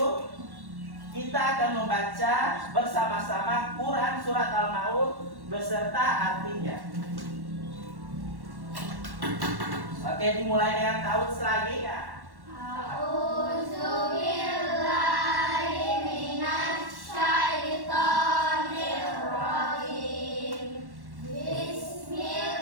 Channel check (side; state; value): left; late; 1.1 ms